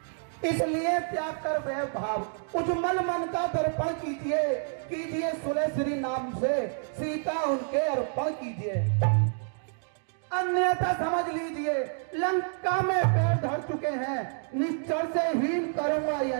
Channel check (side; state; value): left; silent; 59 dB below the other